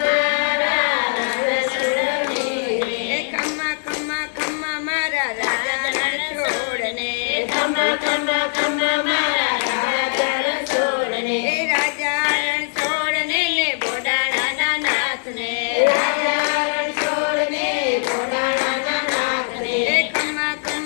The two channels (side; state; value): right; silent; 65 dB below the other